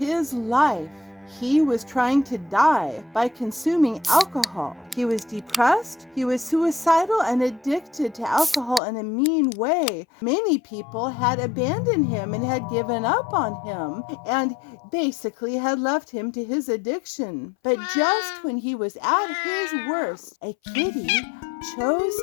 life. He was trying to die by consuming alcohol. He was depressed, he was suicidal and addicted to alcohol in a mean way. Many people had abandoned him and had given up on him and basically had left him to his addiction. But just when he was at his worst, a kitty chose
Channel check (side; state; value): right; drops out; at 8.8 s